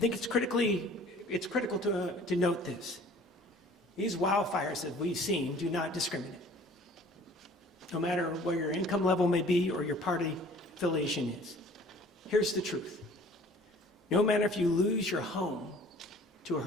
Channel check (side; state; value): both; normal; correlation 0.50